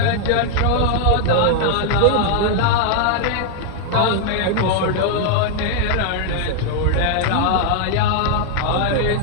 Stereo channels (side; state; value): both; different; correlation 0.00